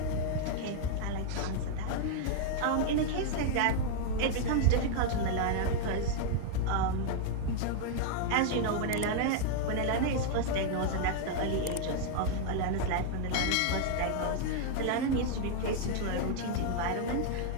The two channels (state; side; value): different; both; correlation 0.00